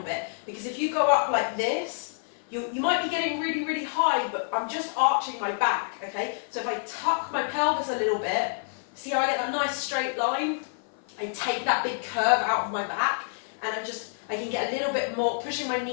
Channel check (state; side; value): silent; right; 55 dB below the other